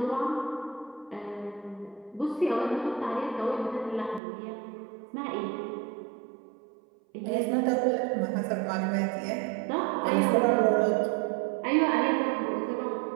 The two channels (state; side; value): drops out; left; at 4.2 s